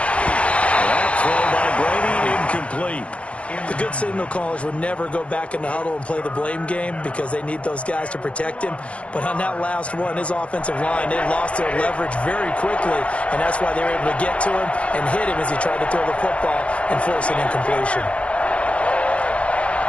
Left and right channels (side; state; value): right; late; 0.062 ms